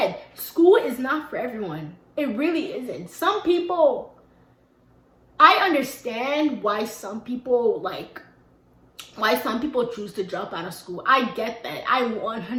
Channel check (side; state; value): both; identical; correlation 1.00